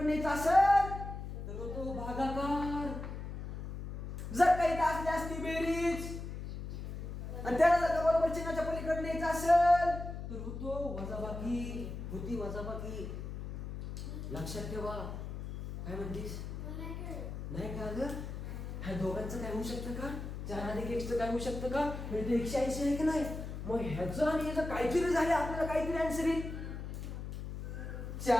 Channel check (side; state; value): left; noise; hum, 7 dB below the sound